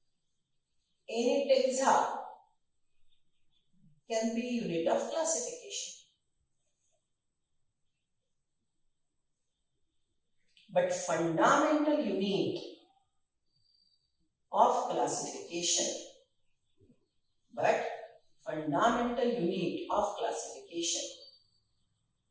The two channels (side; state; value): both; identical; correlation 1.00